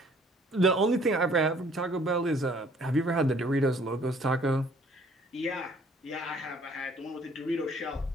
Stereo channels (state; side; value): normal; both; correlation 0.58